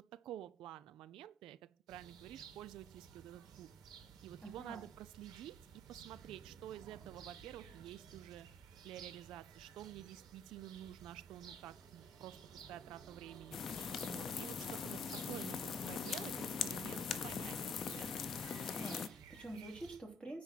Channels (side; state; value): both; normal; correlation 0.61